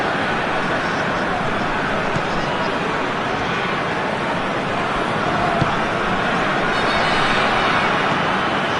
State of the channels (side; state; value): both; identical; correlation 1.00